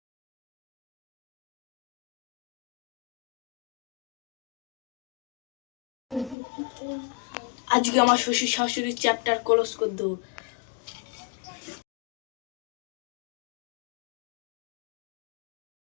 আজকে আমার শ্বশুর শাশুড়ির চ্যাপ্টার ক্লোজ করে দেবো।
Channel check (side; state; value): right; drops out; at 6.4 s